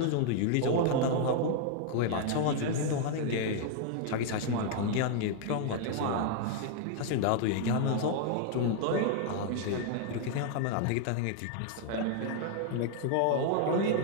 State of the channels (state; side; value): different; both; correlation -0.01